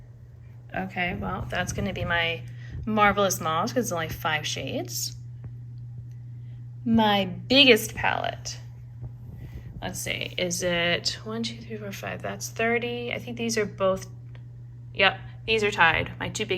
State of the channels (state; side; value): identical; both; correlation 1.00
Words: Okay, well, that's gonna be my Marvelous Mauve because it's only 5 shades. My biggest palette. Let's see, is it 1, 2, 3, 4, 5? That's 30. I think these are both, yep, these are tied. My 2